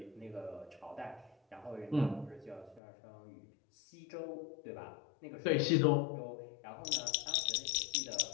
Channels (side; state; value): right; drops out; at 2.8 s